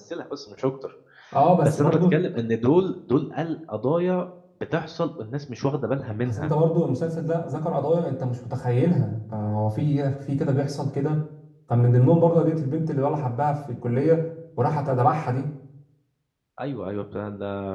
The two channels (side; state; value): both; identical; correlation 1.00